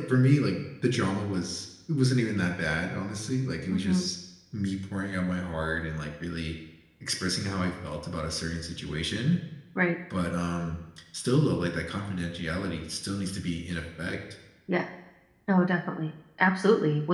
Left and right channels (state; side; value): identical; both; correlation 1.00